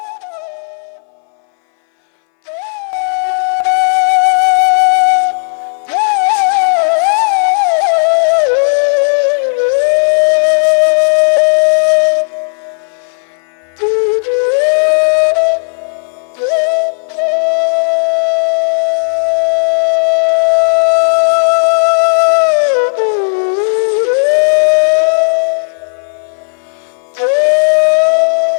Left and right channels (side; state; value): right; silent; digital silence